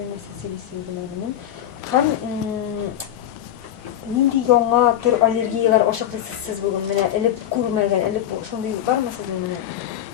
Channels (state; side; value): quieter; right; 11.1 dB